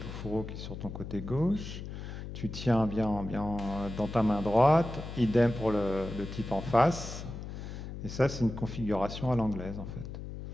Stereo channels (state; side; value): noise; left; hum, 9 dB below the sound